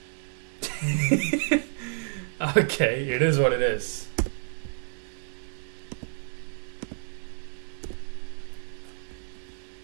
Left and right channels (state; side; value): silent; left; 58 dB below the other